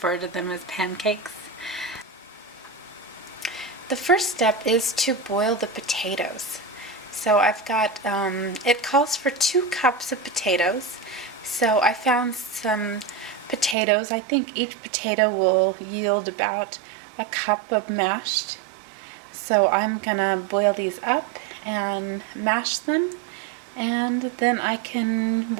to them as pancakes. The first step is to boil the potatoes. So I've got, it calls for 2 cups of potatoes. So I found some potatoes. I think each potato will yield about a cup of mashed. So I'm gonna boil these up and mash them, and then I can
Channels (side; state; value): left; drops out; at 13.8 s